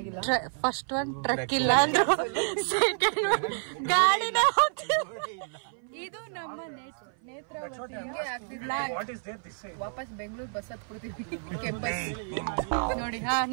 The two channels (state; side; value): silent; left; 56 dB below the other